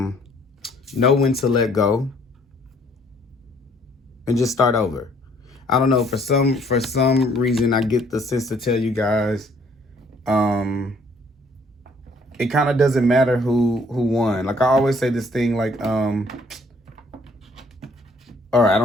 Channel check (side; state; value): both; normal; correlation 0.62